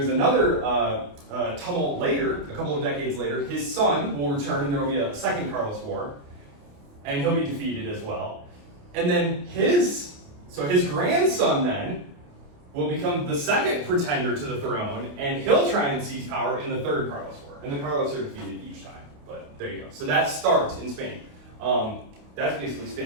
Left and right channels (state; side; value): late; left; 28 ms